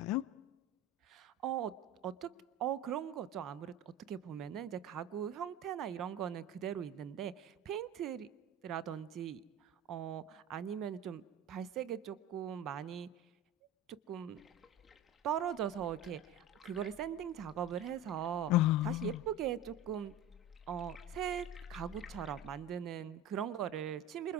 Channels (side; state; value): both; normal; correlation 0.31